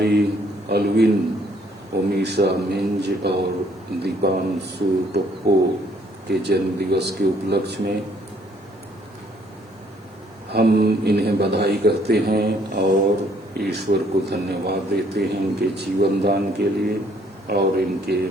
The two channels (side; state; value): both; normal; correlation 0.65